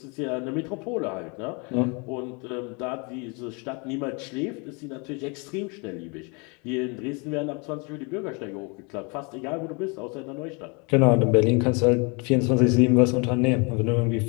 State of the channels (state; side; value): quieter; right; 31.8 dB